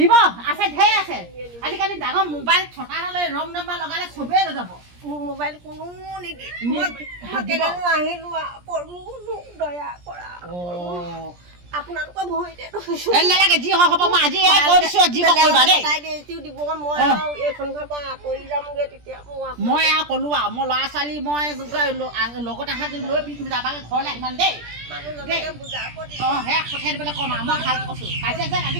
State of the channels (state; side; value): late; left; 17 ms